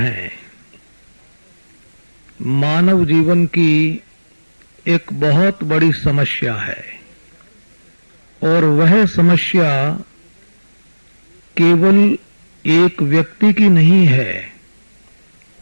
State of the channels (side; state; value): both; inverted; correlation -1.00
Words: मानव जीवन की एक बहुत बड़ी समस्या है और वह समस्या केवल एक व्यक्ति की नहीं है।